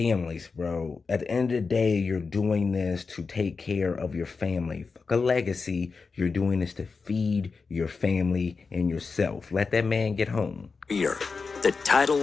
bro. At the end of the day, you're doing this to take care of your family. Fuck a legacy. You're doing this to feed your family and yourself. Let that man get home. Here, the title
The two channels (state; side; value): quieter; right; 4.7 dB